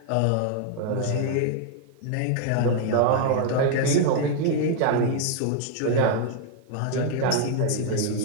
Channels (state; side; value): different; both; correlation 0.00